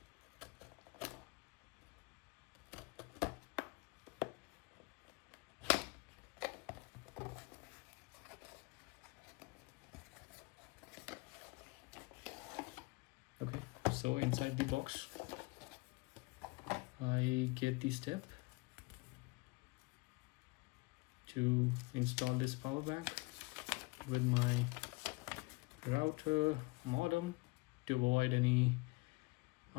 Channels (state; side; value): quieter; right; 26.5 dB